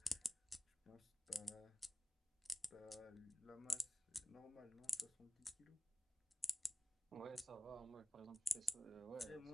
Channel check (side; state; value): both; normal; correlation 0.95